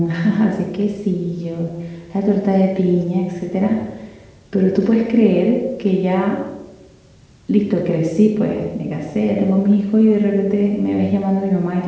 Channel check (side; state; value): both; identical; correlation 1.00